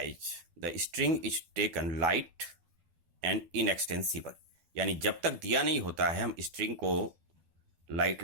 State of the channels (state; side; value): late; left; 12 ms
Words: the string is taken light and inextensible, यानी जब तक दिया नहीं होता है हम स्ट्रिंग को लाइट